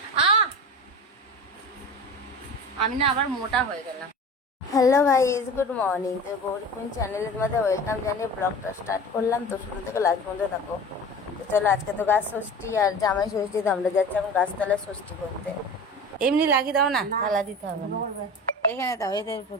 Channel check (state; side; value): normal; both; correlation 0.35